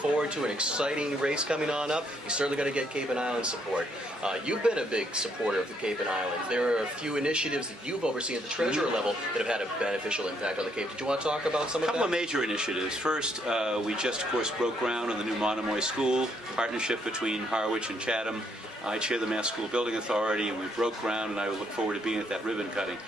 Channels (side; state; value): both; normal; correlation 0.72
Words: to an exciting race coming on up. He's certainly going to get Cape and Island support. You've been a big supporter of the Cape and Islands. There are a few initiatives that you've overseen at the treasurer level that have had a beneficial impact on the Cape. Did you want to talk about some of that? A couple of major initiatives. First, we just, of course, broke ground on the new Monomoy School, partnership between Harwich and Chatham. I chair the Mass School Building Authority, and we broke ground, and I look forward to being at that ribbon cutting.